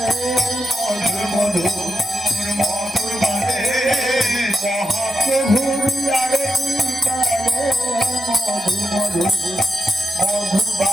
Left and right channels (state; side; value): normal; both; correlation 0.86